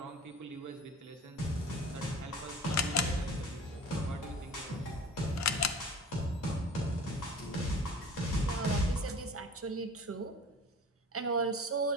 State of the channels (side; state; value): both; normal; correlation 0.42